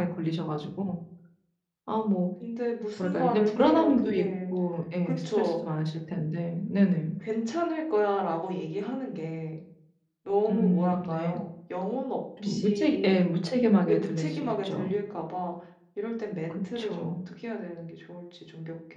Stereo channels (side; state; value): both; identical; correlation 1.00